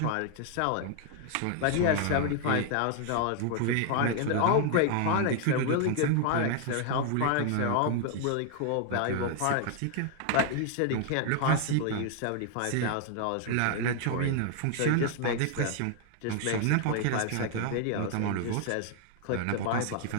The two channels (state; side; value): different; both; correlation 0.00